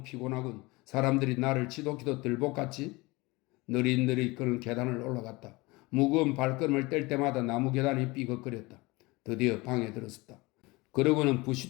피곤하군. 사람들이 나를 지독히도 들볶았지? 느릿느릿 그는 계단을 올라갔다. 무거운 발걸음을 뗄 때마다 나무 계단이 삐걱거렸다. 드디어 방에 들었었다. 그러고는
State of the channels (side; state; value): right; quieter; 23.3 dB